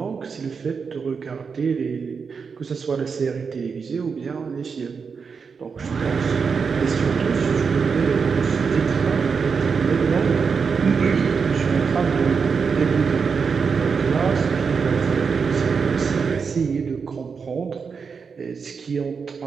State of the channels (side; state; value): left; quieter; 5.6 dB